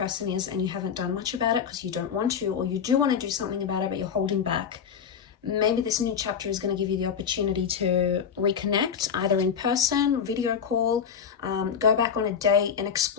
is and you haven't done much about it because you don't want to, or you do want to do something about it but you're holding back. Maybe this new chapter is going to give you the opportunity to reconnect, either in person, video call, go back on a date and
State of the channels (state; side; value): quieter; right; 7.2 dB